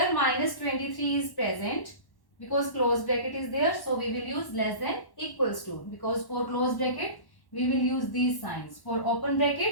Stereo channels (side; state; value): right; late; 1.1 ms